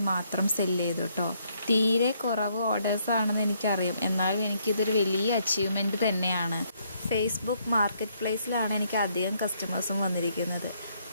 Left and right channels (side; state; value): both; inverted; correlation -0.71